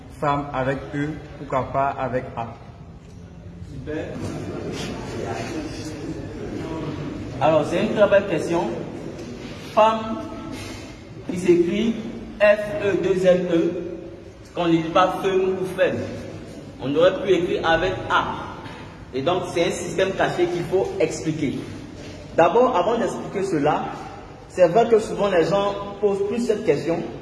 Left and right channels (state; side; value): identical; both; correlation 1.00